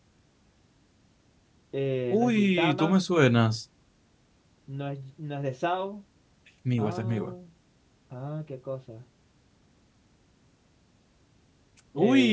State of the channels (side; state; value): both; identical; correlation 1.00